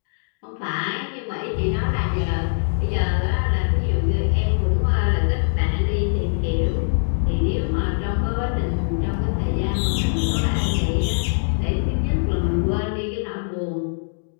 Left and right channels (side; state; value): right; silent; digital silence